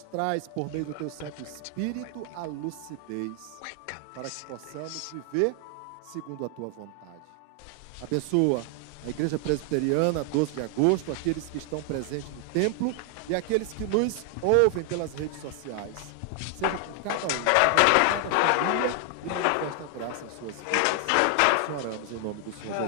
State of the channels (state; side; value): different; both; correlation 0.00